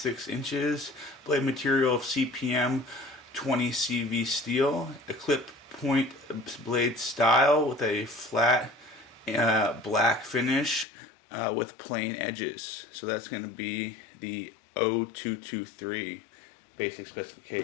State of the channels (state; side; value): drops out; right; at 10.9 s